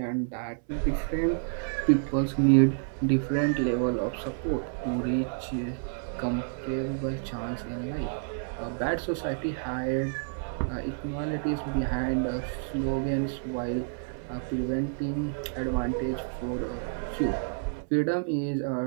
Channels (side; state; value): left; silent; 58 dB below the other